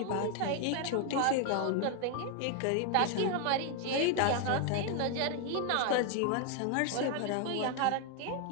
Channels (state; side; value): different; both; correlation 0.01